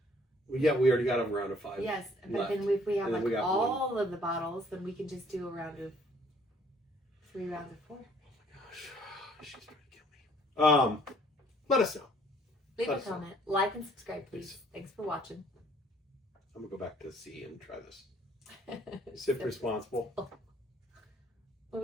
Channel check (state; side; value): normal; both; correlation 0.60